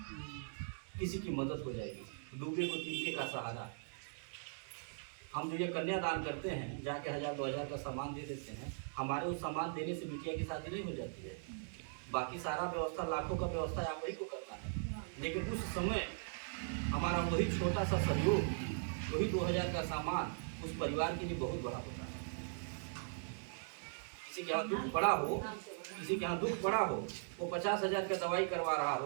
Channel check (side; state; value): left; silent; digital silence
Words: किसी की मदद हो जाएगी, डूबे को तिनके का सहारा। हम जो ये कन्यादान करते हैं, जाके 1000-2000 का सामान दे देते हैं, हमारे उस सामान देने से बिटिया की शादी नहीं हो जाती है। बाकी सारा व्यवस्था, लाखों का व्यवस्था आप वही को करना है, लेकिन उस समय हमारा वही छोटा सा सहयोग, वही 2000 का सामान उस परिवार के लिए बहुत बड़ा होता है। किसी के यहाँ दुख पड़ा हो, किसी के यहाँ दुख पड़ा हो, वो 50,000 का दवाई करवा रहा